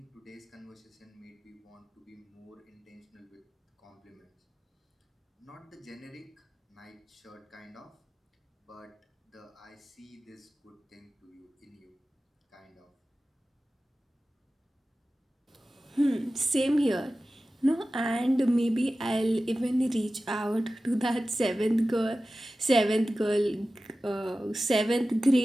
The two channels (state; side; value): normal; both; correlation 0.95